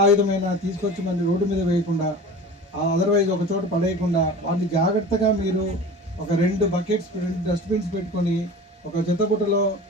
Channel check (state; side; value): normal; both; correlation 0.37